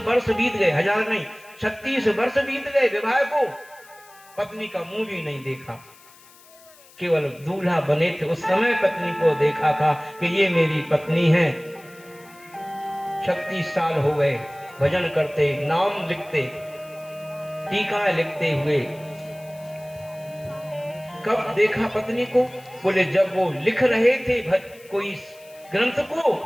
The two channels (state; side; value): noise; left; hiss, 25 dB below the sound